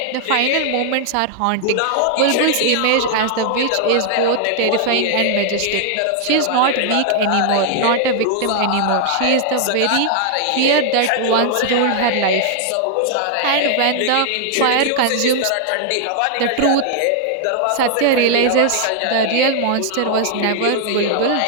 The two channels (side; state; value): both; different; correlation 0.00